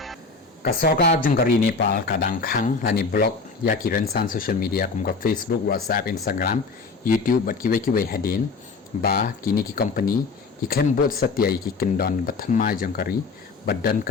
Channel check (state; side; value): quieter; right; 4.3 dB